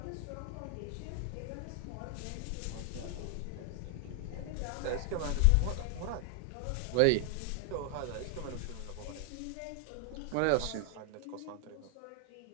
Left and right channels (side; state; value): both; different; correlation 0.00